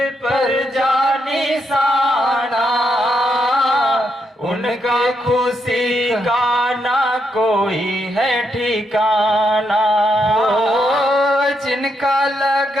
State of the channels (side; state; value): both; normal; correlation 0.79